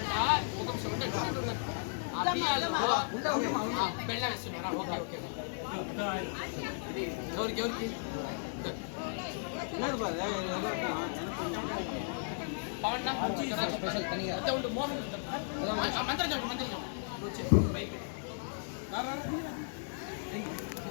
ఒక బెల్లం వేస్తున్నారా? Okay okay. ఎవరికి ఎవరికి పవన్ ఉండు మోహన్ మంత్రం చెప్పు మంత్రం చెప్పు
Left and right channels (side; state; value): right; silent; 54 dB below the other